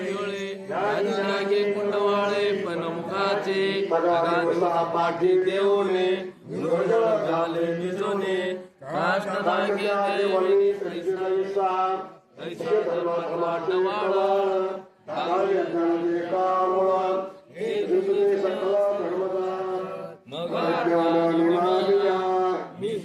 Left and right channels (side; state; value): both; identical; correlation 1.00